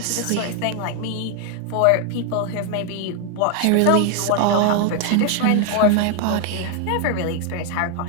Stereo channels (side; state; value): both; different; correlation 0.01